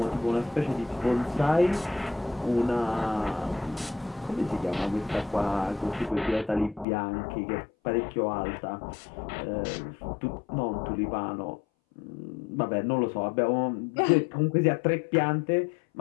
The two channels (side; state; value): right; drops out; at 6.9 s